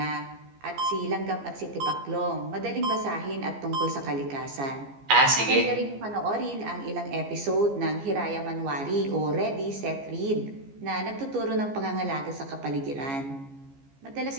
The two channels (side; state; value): left; late; 15 ms